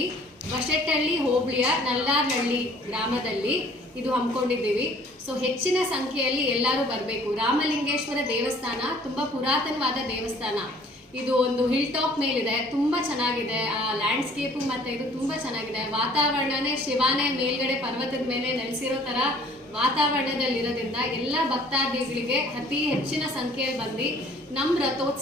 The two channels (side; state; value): both; normal; correlation 0.55